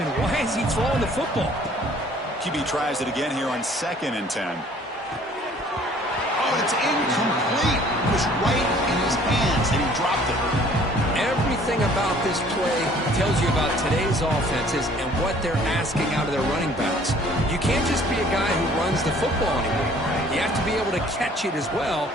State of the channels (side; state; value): both; normal; correlation 0.55